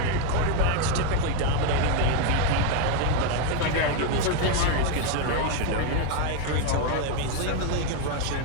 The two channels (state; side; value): different; both; correlation 0.01